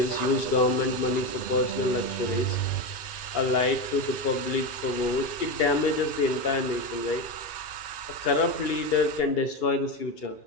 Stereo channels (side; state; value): right; late; 2.3 ms